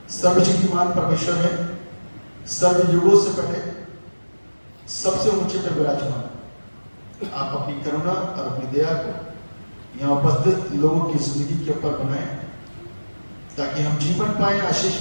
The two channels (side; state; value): both; inverted; correlation -1.00